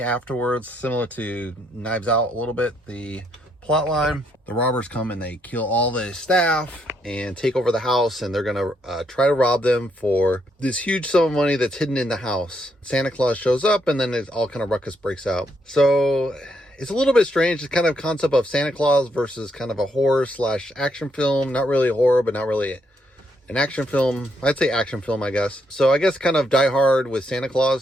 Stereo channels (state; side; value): normal; both; correlation 0.75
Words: afterwards, similar to Knives Out a little bit, the plot line. The robbers come and they kill all the staff and take over the house, and they're gonna try to rob them for this huge sum of money that's hidden in the house. Santa Claus shows up, and then it's all kind of ruckus breaks out. So it's a little bit strange. It's kind of concept of Santa Claus versus kind of a horror slash action film. Not really a horror, but not really an action film. I'd say action film, I guess. So I guess kind of Die Hard with Santa